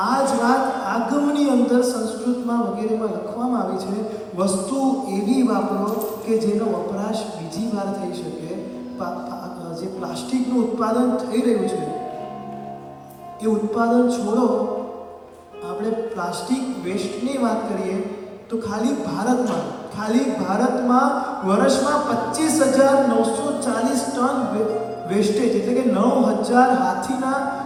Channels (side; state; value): both; identical; correlation 1.00